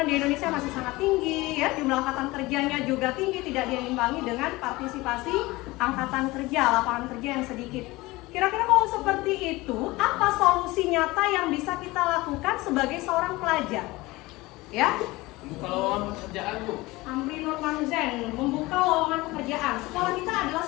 di Indonesia masih sangat tinggi, ya, jumlah angkatan kerjanya juga tinggi, tidak diimbangi dengan partisipasi angkatan kerja, lapangan kerja yang sedikit. Kira-kira kalau seperti itu, apa solusi nyata yang bisa kita lakukan sebagai seorang pelajar? Ya, Membuka lowongan pekerjaan, Bu. Amri Nurman Zen, membuka lowongan pekerjaan. Sekolah kita adalah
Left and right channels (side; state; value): right; quieter; 20.8 dB